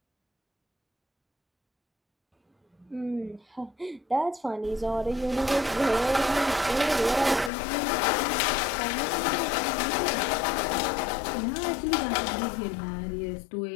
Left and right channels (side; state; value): right; drops out; at 7.5 s